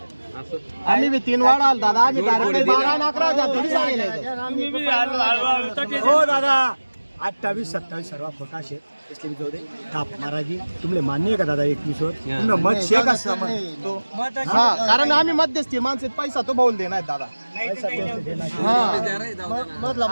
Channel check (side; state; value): both; inverted; correlation -1.00